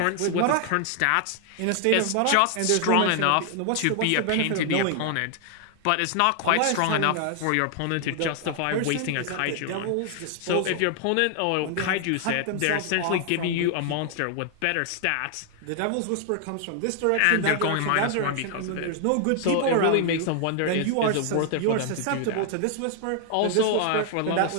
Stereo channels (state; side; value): different; both; correlation 0.00